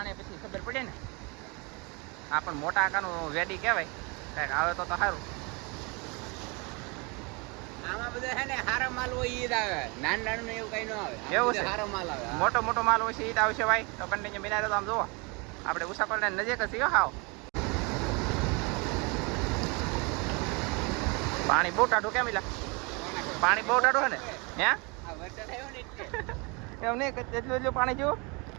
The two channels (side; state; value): left; quieter; 29.6 dB